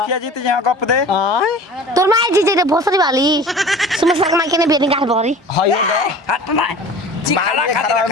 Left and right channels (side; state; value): both; normal; correlation 0.40